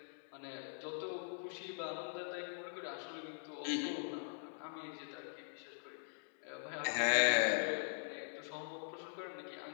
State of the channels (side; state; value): right; silent; digital silence